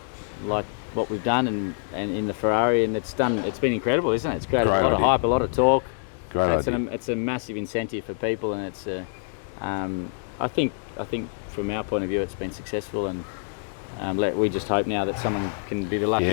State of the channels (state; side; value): silent; right; digital silence